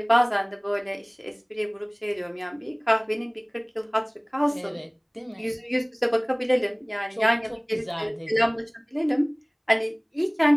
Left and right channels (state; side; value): identical; both; correlation 1.00